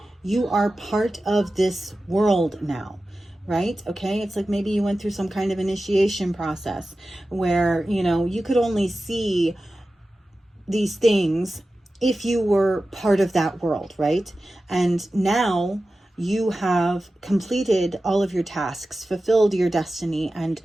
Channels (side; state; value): both; normal; correlation 0.94